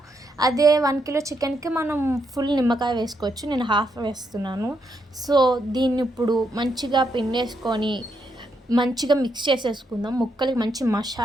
అదే 1 కిలో చికెన్కి మనం ఫుల్ నిమ్మకాయ వేసుకోవచ్చు, నేను హాఫ్ వేస్తున్నాను. సో దీన్ని ఇప్పుడు మంచిగా పిండేసుకొని మంచిగా మిక్స్ చేసేసుకుందాం. ముక్కలకి మంచి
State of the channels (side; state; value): both; normal; correlation 0.79